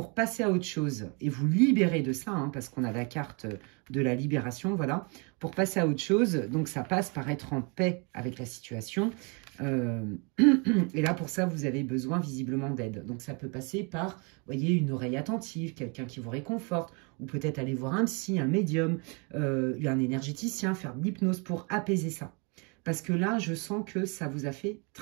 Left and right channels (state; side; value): quieter; left; 33.3 dB